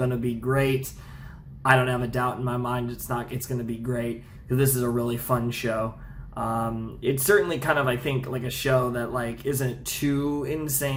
to be great. I don't have a doubt in my mind it's going to be great, because this is a really fun show. It's certainly kind of, I think, like a show that like isn't too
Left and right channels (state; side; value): identical; both; correlation 1.00